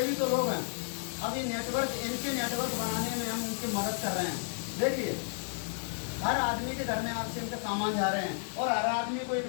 भी तो लोग हैं। अब ये नेटवर्क, इनके नेटवर्क बनाने में हम उनकी मदद कर रहे हैं। देखिए हर आदमी के घर में आरसीएम के सामान जा रहे हैं और हर आदमी को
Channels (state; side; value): silent; right; 56 dB below the other